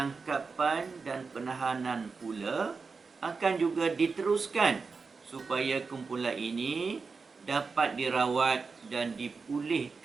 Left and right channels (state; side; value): quieter; left; 4.7 dB